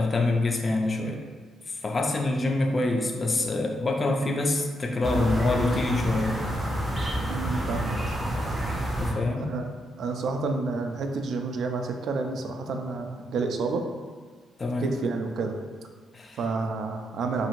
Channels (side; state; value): both; normal; correlation 0.81